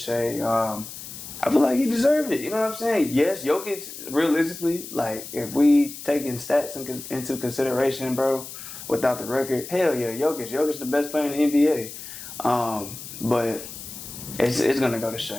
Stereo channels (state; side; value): noise; left; hiss, 12 dB below the sound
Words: I feel like he deserved it. You know what I'm saying? Yes, Jokic, realistically, like, if we taking stats into consideration, bro, without the record, hell yeah, Jokic the best player in the NBA. But it's going to go to